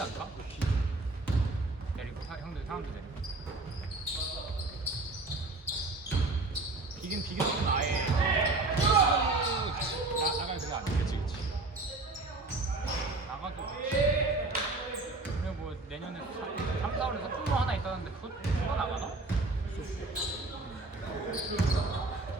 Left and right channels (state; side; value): quieter; left; 3.2 dB